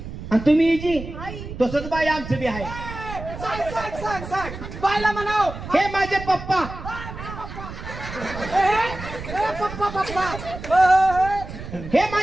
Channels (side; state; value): right; noise; rumble, 10 dB below the sound